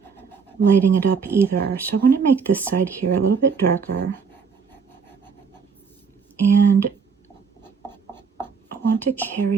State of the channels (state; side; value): quieter; left; 5.7 dB